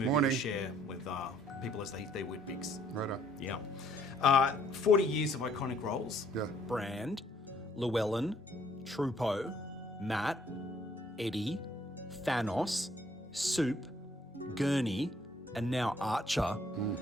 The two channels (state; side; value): normal; both; correlation 0.63